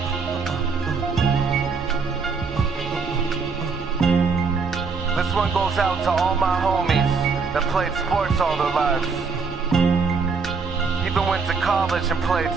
This one goes out to all my homies that played sports all their lives. Even went to college and played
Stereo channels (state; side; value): quieter; left; 5.0 dB